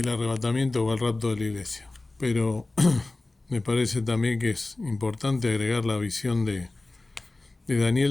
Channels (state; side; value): quieter; right; 3.1 dB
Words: arrebatamiento o el rapto de la iglesia. Pero me parece también que es importante agregar la visión de